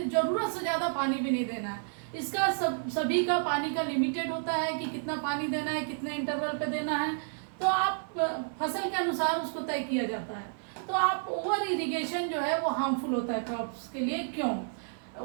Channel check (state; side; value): silent; left; 57 dB below the other